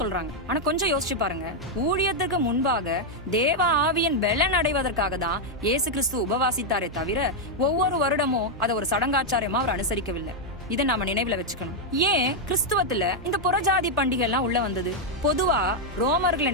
சொல்றாங்க. ஆனா கொஞ்சம் யோசிச்சு பாருங்க, ஊழியத்துக்கு முன்பாக தேவ ஆவியின் பலன் அடைவதற்காக தான் இயேசு கிறிஸ்து உபவாசித்தாரே தவிர ஒவ்வொரு வருடமும் அதை ஒரு சடங்காச்சாரியமா அவர் அனுசரிக்கவில்லை. இதை நாம நினைவுல வச்சுக்கணும். ஏன் கிறிஸ்துவத்துல இந்த புறஜாதி பண்டிகை எல்லாம் உள்ள வந்தது? பொதுவா ரோமர்களை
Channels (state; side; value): normal; both; correlation -0.01